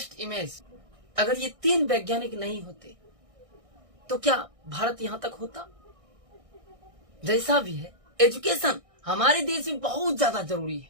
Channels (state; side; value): late; left; 1.6 ms